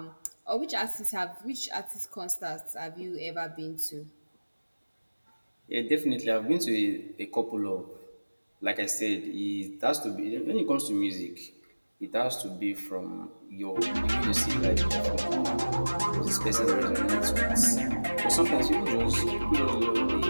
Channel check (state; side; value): inverted; both; correlation -1.00